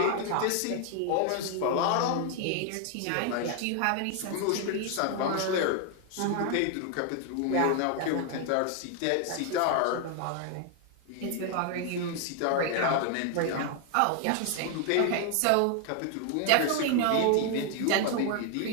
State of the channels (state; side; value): different; both; correlation 0.00